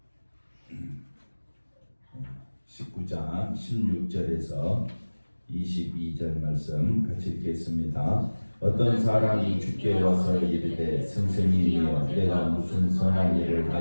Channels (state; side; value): inverted; both; correlation -1.00